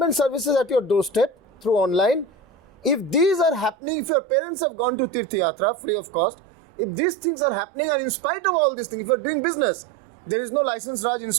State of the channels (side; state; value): left; drops out; at 3.8 s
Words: services at your doorstep through online, if these are happening, if your parents have gone to Tirth Yatra free of cost, if these things are happening, and in spite of all these things, if you are doing business, there is no license Raj,